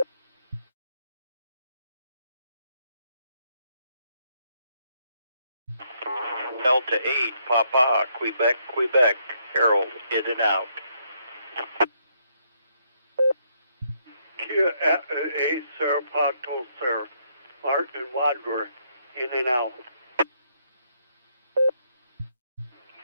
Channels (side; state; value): both; inverted; correlation -0.73